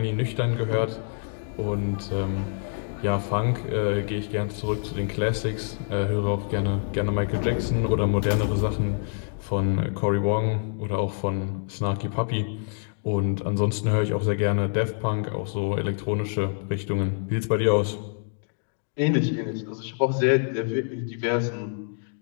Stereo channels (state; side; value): silent; right; digital silence